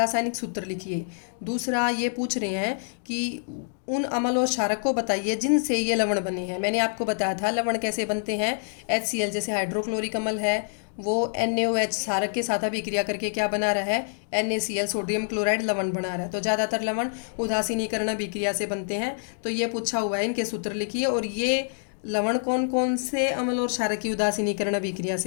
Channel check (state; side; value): silent; right; digital silence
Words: सूत्र लिखिए। दूसरा ये पूछ रहे हैं कि उन अम्ल और क्षारक को बताइए जिनसे ये लवण बने हैं। मैंने आपको बताया था लवण कैसे बनते हैं। HCl जैसे हाइड्रोक्लोरिक अम्ल है, वो NaOH क्षारक के साथ अभिक्रिया करके क्या बना रहा है? NaCl सोडियम क्लोराइड लवण बना रहा है। तो ज़्यादातर लवण उदासीनीकरण अभिक्रिया से बनते हैं। तो ये पूछा हुआ है, इनके सूत्र लिखिए। और ये लवण कौन कौन से अम्ल और क्षारक की उदासीनीकरण अभिक्रिया